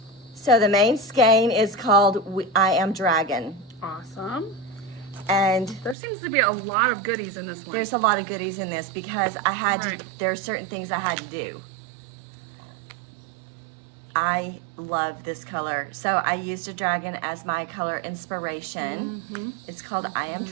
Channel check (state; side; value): drops out; left; at 6.0 s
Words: So the main skein is called I Am Dragon. Awesome. And there seems to be a lot of goodies in this one. There's a lot of goodies in this because I had to, there are certain things I had to do. I love this color. So I used a dragon as my color inspiration. It's called I Am